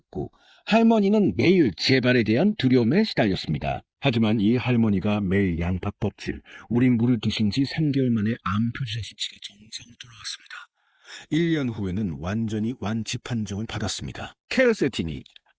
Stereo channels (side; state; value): both; identical; correlation 1.00